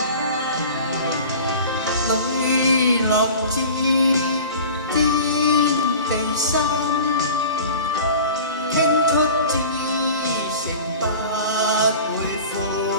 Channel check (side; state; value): both; inverted; correlation -0.39